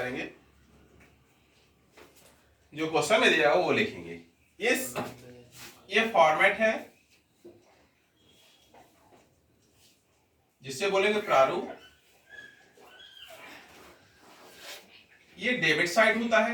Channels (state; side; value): identical; both; correlation 1.00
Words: जो क्वेश्चन में दिया हो वो लिखेंगे। ये फॉर्मेट है जिससे बोलेंगे प्रारूप। ये डेबिट साइड होता